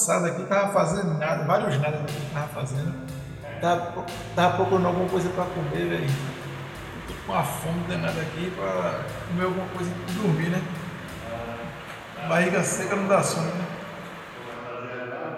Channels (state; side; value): identical; both; correlation 1.00